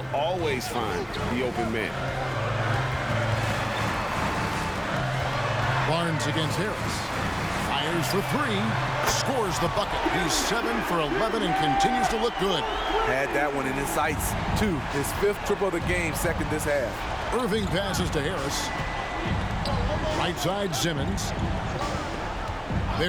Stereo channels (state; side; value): identical; both; correlation 1.00